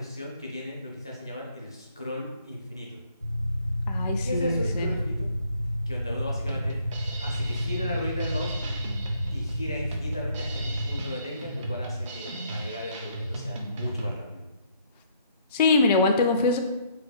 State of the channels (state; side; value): inverted; both; correlation -0.66